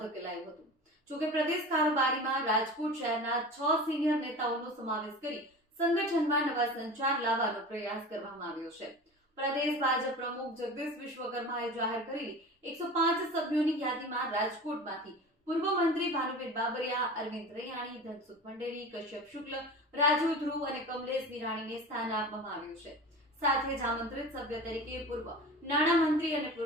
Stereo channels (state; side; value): normal; both; correlation 0.34